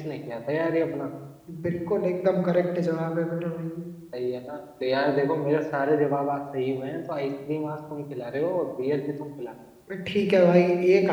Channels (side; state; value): both; identical; correlation 1.00